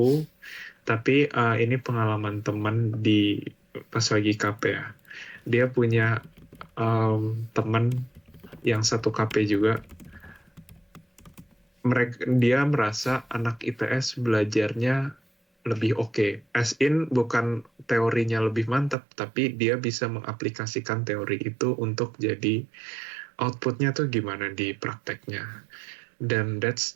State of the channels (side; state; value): left; drops out; at 18.9 s